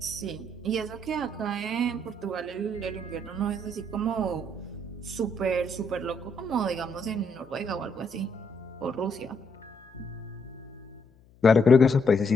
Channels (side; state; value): left; noise; hum, 27 dB below the sound